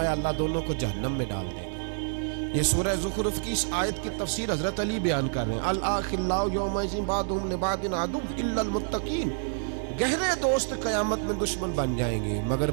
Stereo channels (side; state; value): left; silent; 59 dB below the other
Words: اللہ دونوں کو جہنم میں ڈال دے گا۔ یہ سورہ زخرف کی اس آیت کی تفسیر حضرت علی بیان کر رہے ہیں، الاخلاء یومئذ بعضهم لبعض عدو الا المتقین، گہرے دوست قیامت میں دشمن بن جائیں گے مگر